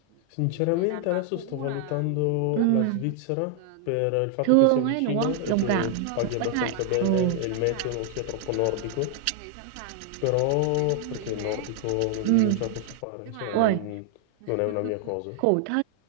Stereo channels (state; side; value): different; both; correlation 0.00